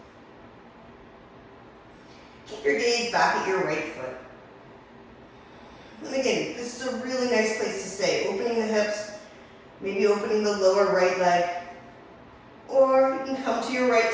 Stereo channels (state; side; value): identical; both; correlation 1.00